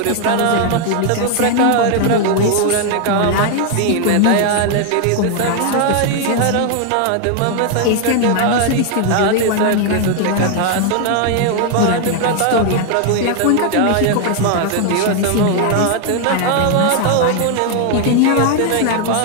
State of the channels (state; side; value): different; both; correlation 0.00